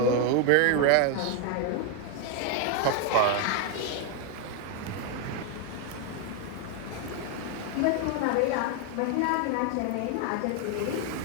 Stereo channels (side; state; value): both; different; correlation 0.01